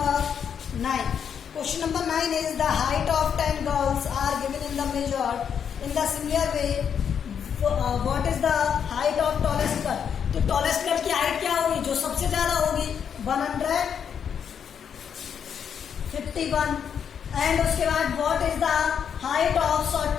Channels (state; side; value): quieter; right; 7.7 dB